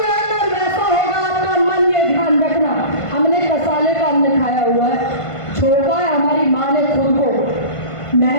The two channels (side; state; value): right; late; 1.5 ms